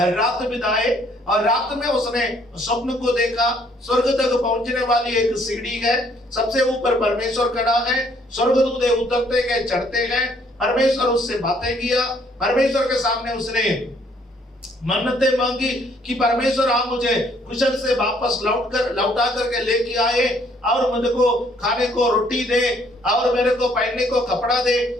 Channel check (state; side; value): normal; both; correlation 0.65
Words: रात बिताए, और रात में उसने स्वप्न को देखा। स्वर्ग तक पहुंचने वाली एक सीढ़ी है, सबसे ऊपर परमेश्वर खड़ा है, स्वर्गदूत उतरते गए चढ़ते गए, परमेश्वर उससे बातें किया। परमेश्वर के सामने उसने मन्नतें मांगी कि परमेश्वर आप मुझे कुशल से वापस लौटा करके लेके आए, और मुझे को खाने को रोटी दे, और मेरे को पहनने को कपड़ा दे,